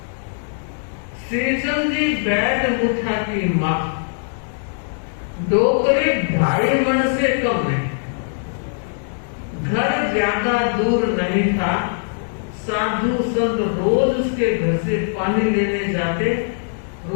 श्रीचंद जी बैठ मुठा की मां, डोकरे 2.5 मन से कम नहीं। घर ज्यादा दूर नहीं था। साधु संत रोज उसके घर से पानी लेने जाते,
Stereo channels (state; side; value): silent; right; 65 dB below the other